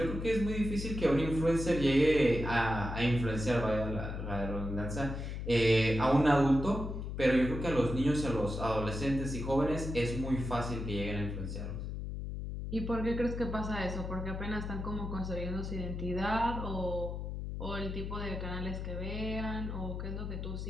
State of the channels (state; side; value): noise; left; hum, 5 dB below the sound